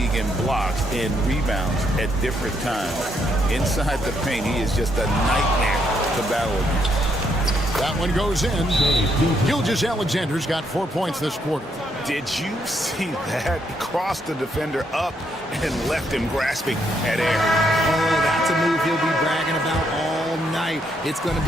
in blocks and rebounds at different times. Inside the paint, he is just a nightmare to battle against. That one goes in. Gilgeous-Alexander's got 4 points this quarter. Did you see that? Crossed the defender up and left him grasping at air. Oh, that's a move he'll be bragging about all night. It's going to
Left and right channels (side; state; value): both; normal; correlation 0.74